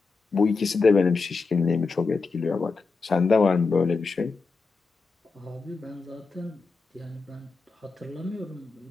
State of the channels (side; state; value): right; quieter; 4.3 dB